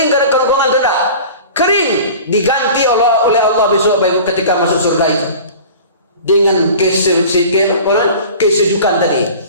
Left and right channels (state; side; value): inverted; both; correlation -0.40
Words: karena kerongkongan tidak? Kering, diganti oleh Allah besok, Pak Ibu, ketika masuk surga itu dengan kesejukan tadi.